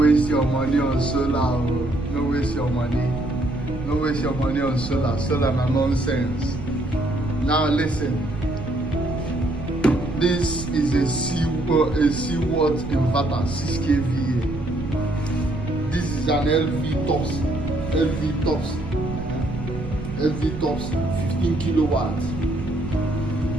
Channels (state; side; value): noise; right; rumble, 9 dB below the sound